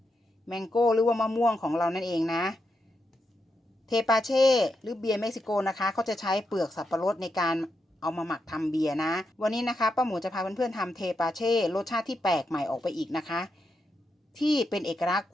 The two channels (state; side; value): normal; both; correlation 0.84